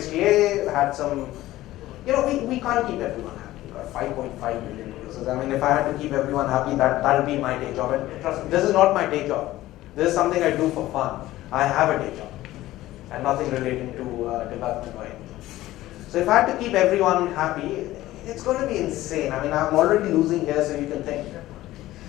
had some, you know, we can't keep everyone happy. We've got 5.5 million users. I mean, if I had to keep everyone happy, that'll be my day job. And trust me, this is not my day job. This is something I do for fun. I have a day job, and nothing relating to development or anything. So if I had to keep everyone happy, it's going to be insane. I mean, I'm already losing here, so you can think.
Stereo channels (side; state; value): right; quieter; 15.9 dB